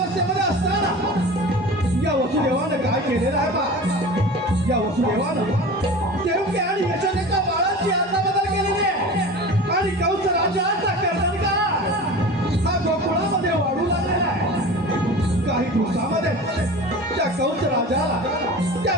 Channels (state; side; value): normal; both; correlation 0.35